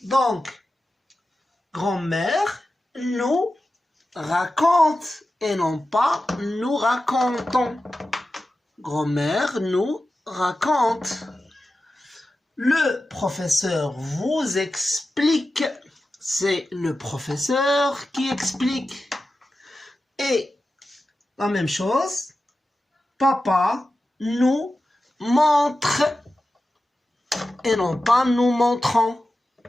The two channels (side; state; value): both; normal; correlation 0.93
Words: Donc, grand-mère nous raconte et non pas nous racontons. Grand-mère nous raconte. Le professeur vous explique. C'est le professeur qui explique. Et la même chose, papa nous montre et non pas nous montrons.